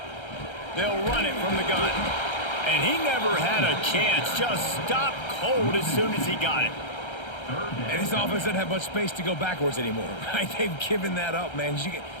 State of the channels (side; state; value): right; late; 1.3 ms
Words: They'll run it from the gun. And he never had a chance, just stopped cold as soon as he got it. And this offense doesn't have much space to go backwards anymore, right? They've given that up, man. You